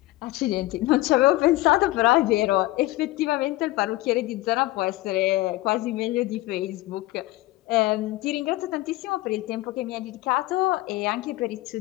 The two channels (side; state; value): right; quieter; 18.2 dB